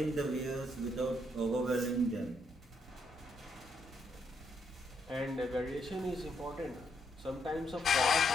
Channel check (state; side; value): normal; both; correlation 0.76